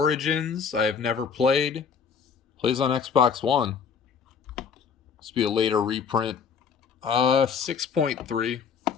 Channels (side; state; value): right; quieter; 6.4 dB